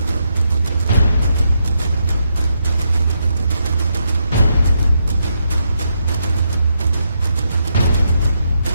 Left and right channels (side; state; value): both; inverted; correlation -0.81